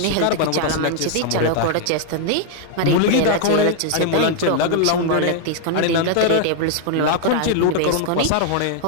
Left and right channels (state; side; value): different; both; correlation 0.00